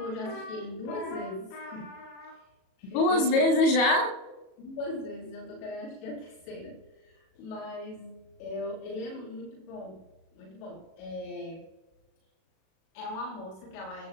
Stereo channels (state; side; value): late; right; 37 ms